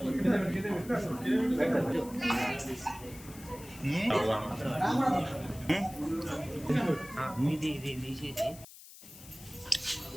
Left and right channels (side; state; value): left; noise; hiss, 18 dB below the sound